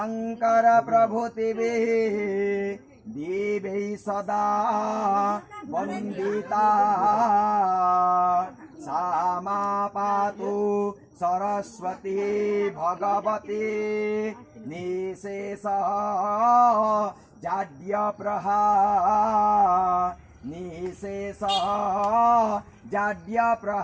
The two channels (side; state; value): both; identical; correlation 1.00